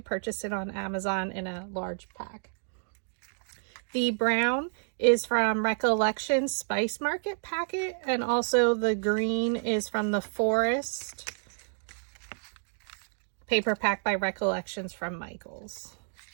purchase it on Amazon in a large pack. The brown is from Recollection Spice Market packet, and also the green is from the Forest paper pack by Recollections from Michaels.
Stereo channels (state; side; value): silent; left; 58 dB below the other